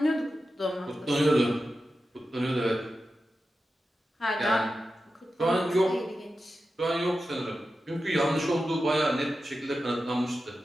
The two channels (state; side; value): normal; both; correlation 0.92